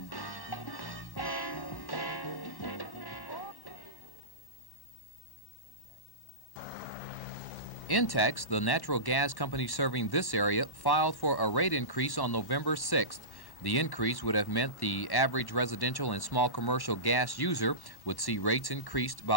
Intex, the natural gas company serving this area, filed for a rate increase on November 6th. The increase would have meant the average residential and small commercial gas user would see rates increased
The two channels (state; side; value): late; right; 1.1 ms